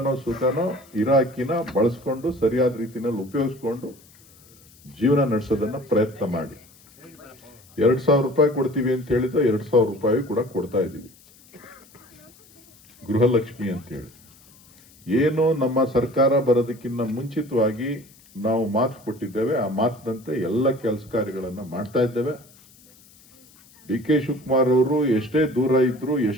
ಸುಖನೋ ಇರೋ ಅಕ್ಕಿನ ಬಳಸ್ಕೊಂಡು ಸರಿಯಾದ ರೀತಿನಲ್ಲಿ ಉಪಯೋಗಿಸ್ಕೊಂಡು ಜೀವನ ನಡೆಸೋದನ್ನ ಪ್ರಯತ್ನ ಮಾಡಿ. 2,000 ರೂಪಾಯಿ ಕೊಡ್ತೀವಿ ಅಂತ ಹೇಳಿದ್ರೆ 2,000 ರೂಪಾಯಿ ಕೂಡ ಕೊಡ್ತಾ ಇದ್ದೀವಿ. ಗೃಹಲಕ್ಷ್ಮಿ ಅಂತೇಳಿ ಏನು ನಮ್ಮ ಸರ್ಕಾರ ಬರೋದಕ್ಕಿಂತ ಮುಂಚಿತವಾಗಿ ನಾವು ಮಾತು ಕೊಟ್ಟಿದ್ದೇವೆ. ಆ ಮಾತಿನಂತೆ ಎಲ್ಲ ಕೆಲಸ ಕಾರ್ಯಗಳನ್ನ ಮಾಡ್ತಾ ಇದ್ದೇವೆ. ಡಿ.ಕೆ. ಶಿವಕುಮಾರ್ ಅವರು ಎಷ್ಟೇ ದೂರ ಇದ್ರು,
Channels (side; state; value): left; noise; hiss, 27 dB below the sound